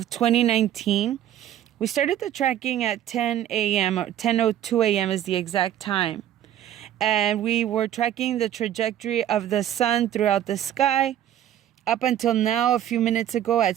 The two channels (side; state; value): left; quieter; 11.2 dB